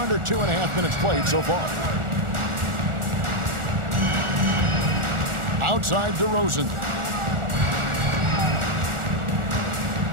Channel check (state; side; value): late; left; 1.4 ms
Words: 2.5 minutes played so far. Outside DeRozan.